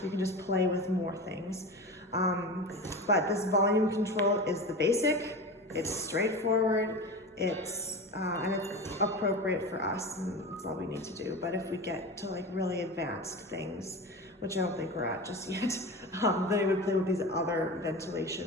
You can just play with more things. But this volume control is the basic. It's straightforward. It's appropriate for us, and that's all we need to do. But if we get to like really advanced things, which I don't think we're at just yet, then we would play with these other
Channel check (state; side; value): normal; both; correlation 0.28